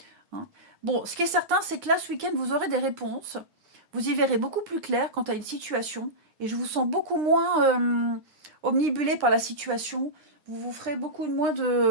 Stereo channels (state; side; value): late; left; 9.8 ms